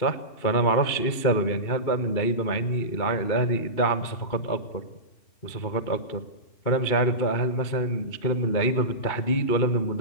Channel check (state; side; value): late; right; 2.3 ms